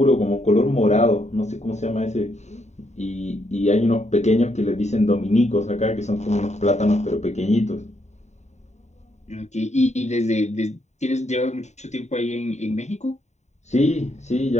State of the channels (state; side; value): late; right; 0.33 ms